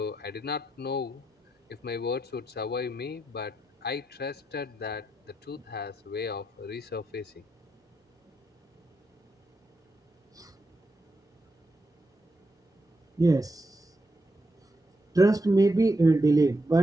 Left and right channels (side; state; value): both; normal; correlation 0.84